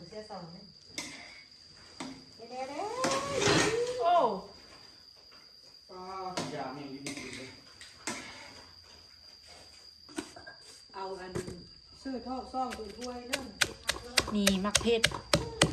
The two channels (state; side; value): identical; both; correlation 1.00